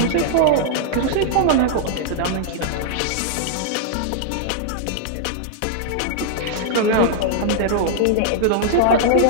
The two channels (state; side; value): different; both; correlation -0.01